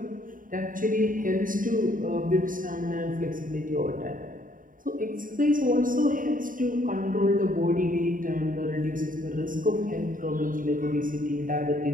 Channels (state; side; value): late; left; 0.39 ms